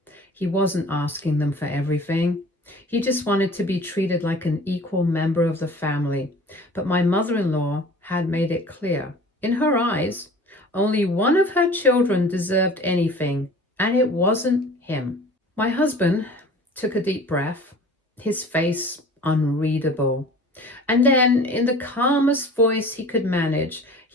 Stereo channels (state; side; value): normal; both; correlation 0.44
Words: He wasn't asking them for everything. He just wanted to be treated like an equal member of the family. But my mother-in-law had made it clear, in her eyes, only one of her children deserved anything, and it wasn't him. My husband took a deep breath, his face unreadable. And then, in the calmest voice he could manage,